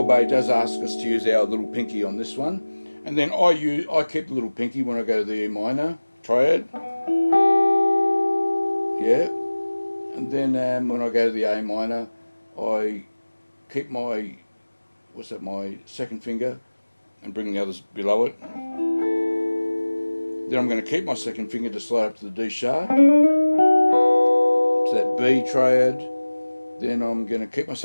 Bay does ask us to use our little pinky on this one. And then I keep the little pinky when I go to the E minor triad. Yeah. And then when I go to the A minor, I keep my, my second finger and bring the others below it. Then I'm going to keep my second finger to slide up to the D sharp, to that B triad. Then I'm going to keep my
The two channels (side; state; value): both; inverted; correlation -1.00